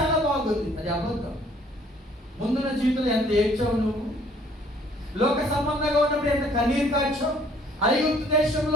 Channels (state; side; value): normal; both; correlation 0.59